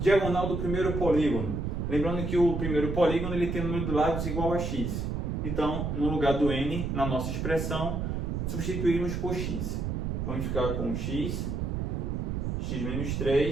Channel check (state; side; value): noise; right; rumble, 2 dB below the sound